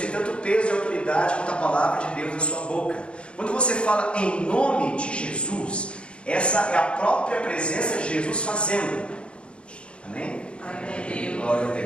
tanto peso e autoridade quanto a palavra de Deus na sua boca. Quando você fala em nome de Jesus, essa é a própria presença de Jesus fazendo. Amém? Amém. Glória a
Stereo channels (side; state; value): right; late; 0.057 ms